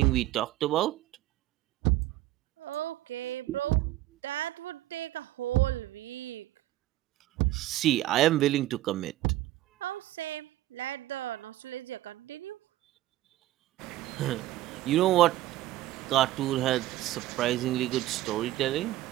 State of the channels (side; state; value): left; quieter; 15.3 dB